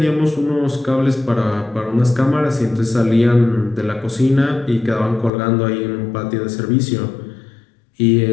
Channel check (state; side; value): drops out; right; at 5.3 s